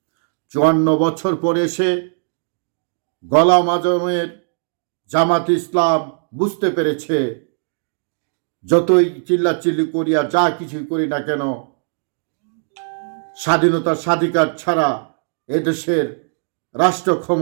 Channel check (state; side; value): silent; left; digital silence